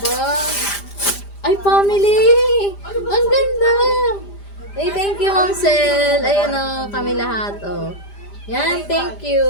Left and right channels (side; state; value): right; late; 5.0 ms